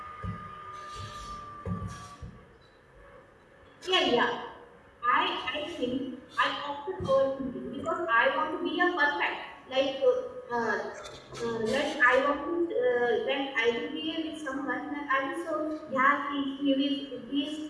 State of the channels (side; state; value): both; identical; correlation 1.00